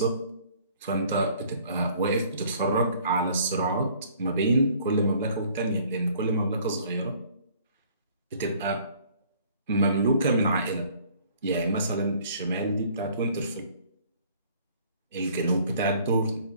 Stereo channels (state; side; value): inverted; both; correlation -0.57